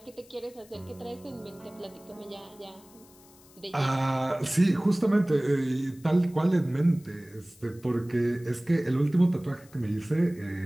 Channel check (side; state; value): left; noise; hiss, 26 dB below the sound